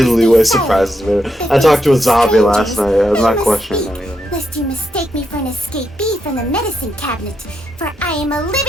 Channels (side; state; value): both; normal; correlation 0.82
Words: Liyue surprises me. I talked to a zombie last night. I'm not questioning anything. Lest you mistake me for an escapee from the medicine cabinet, for I am a